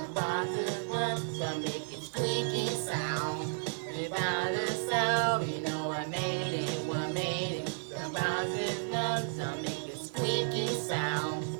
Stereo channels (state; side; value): silent; left; digital silence